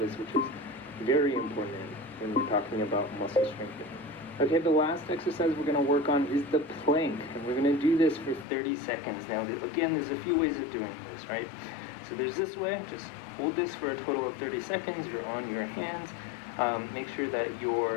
which is very important when we're talking about muscle strengthening. Okay, the last exercise we're going to work on is the plank, and we're going to do this for 30 seconds. Now, again, there's a few ways of doing this, right? So there's this way, just hold this for a total of 30 seconds, you're on your hands, Make sure that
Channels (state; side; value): drops out; right; at 8.5 s